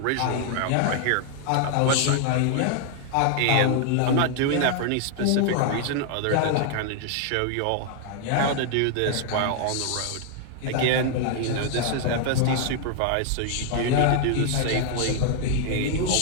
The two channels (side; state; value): both; different; correlation 0.00